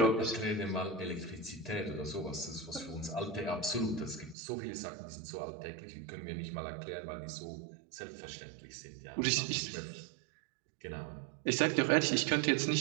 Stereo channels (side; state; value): left; drops out; at 4.4 s